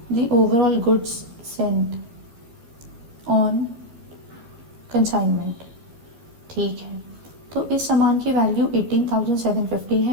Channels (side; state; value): left; late; 13 ms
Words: the overall goods sent on consignment. ठीक है, तो इस सामान की वैल्यू 18,750